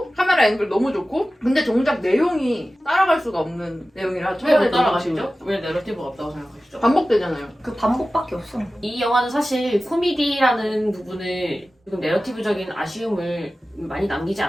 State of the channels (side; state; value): both; normal; correlation 0.95